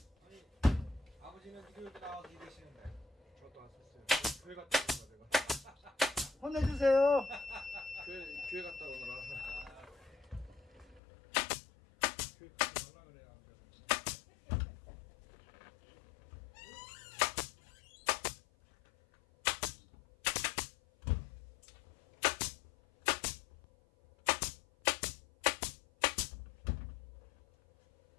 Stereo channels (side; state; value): right; drops out; at 11.0 s